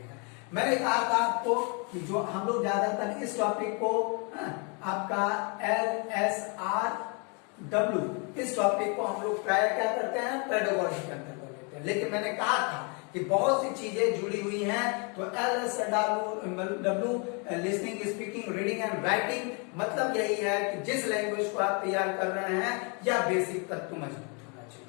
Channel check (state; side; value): quieter; right; 34.7 dB